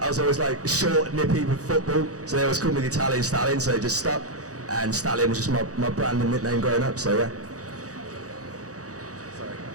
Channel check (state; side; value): late; left; 0.66 ms